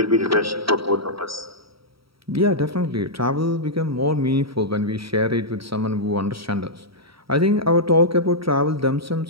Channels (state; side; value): late; left; 0.75 ms